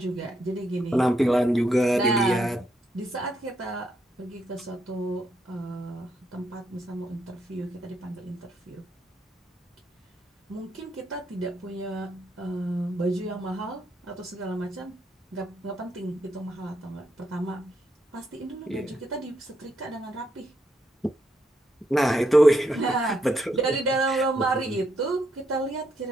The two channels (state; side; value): normal; both; correlation 0.78